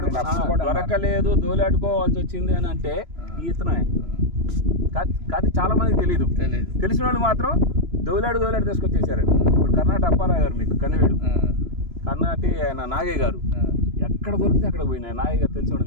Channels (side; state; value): left; late; 3.0 ms